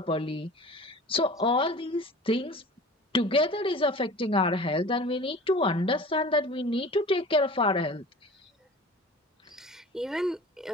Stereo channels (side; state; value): both; normal; correlation 0.40